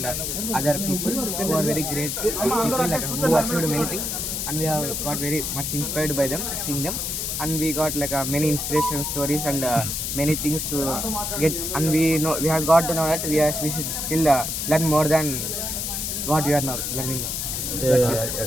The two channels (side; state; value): left; noise; hiss, 2 dB below the sound